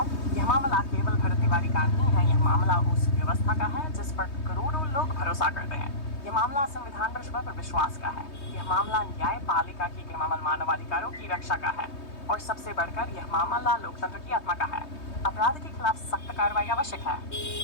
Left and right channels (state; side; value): late; right; 3.2 ms